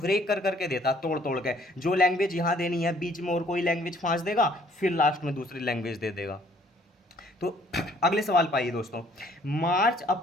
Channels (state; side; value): normal; both; correlation 0.60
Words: कर करके देता, तोड़ तोड़ के, जो लैंग्वेज यहाँ देनी है बीच में और कोई लैंग्वेज फांस देगा, फिर लास्ट में दूसरी लैंग्वेज दे देगा। तो अगले सवाल पाइए दोस्तों, मार्च